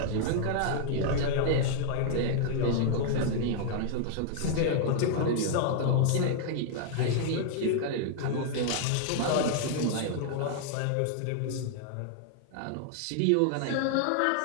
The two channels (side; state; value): both; different; correlation -0.01